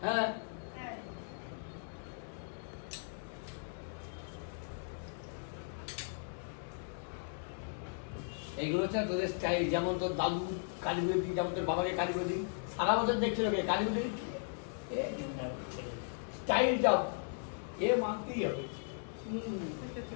হ্যাঁ এইগুলো হচ্ছে তোদের স্টাইল, যেমন তোর দাদু কালীপুজোর দিন, যেমন তোর বাবাকে কালীপুজোর দিন সারা বছর দেখছিল কে কালীপুজোর স্টাইলটা এ মানতেই হবে।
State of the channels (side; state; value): right; silent; digital silence